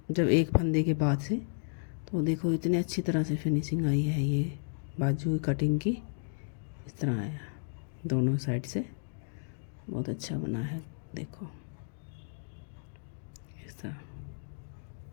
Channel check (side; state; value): right; silent; digital silence